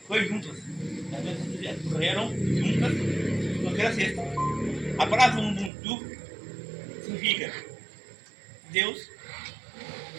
foi juntas. As pessoas correram juntas com aquela cesta. A palavra Ubuntu significa Deus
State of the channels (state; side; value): drops out; left; at 5.7 s